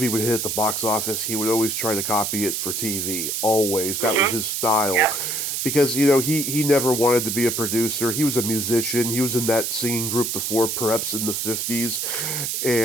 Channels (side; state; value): right; noise; hiss, 1 dB below the sound